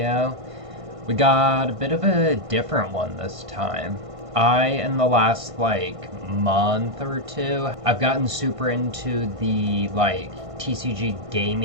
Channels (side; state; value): left; late; 1.5 ms